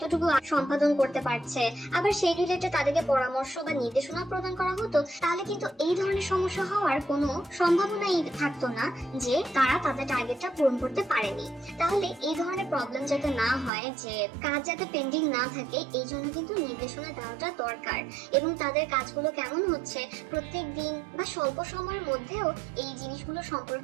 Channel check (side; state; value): left; drops out; at 13.7 s